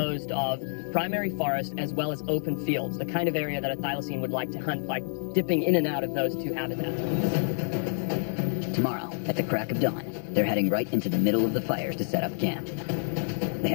of primary forest as well as open fields, the kind of area that a thylacine would like to hunt by dipping in and out of those two habitats. Tomorrow, at the crack of dawn, they're heading right into the middle of the fires to set up camp. They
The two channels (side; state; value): right; silent; digital silence